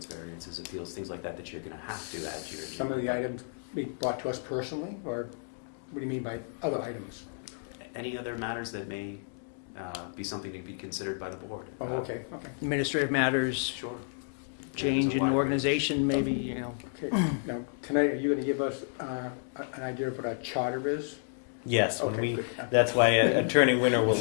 variances, appeals, things like that you're gonna have to add to your agenda. some of the items be brought to us personally, or what do you mean by other items? Any other matters that may be something to be considered by the board? Oh, okay, okay, administrative matters, Sure. change There's a in wide range. organization, maybe, you know. okay. Now, tonight, are you gonna give us an idea of what our charter is? Yes, when Okay, we, good. that's why Attorney Winter will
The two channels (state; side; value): silent; right; digital silence